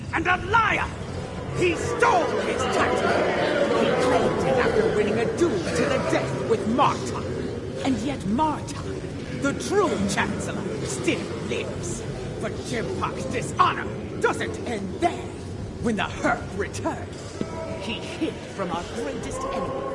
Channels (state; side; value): identical; both; correlation 1.00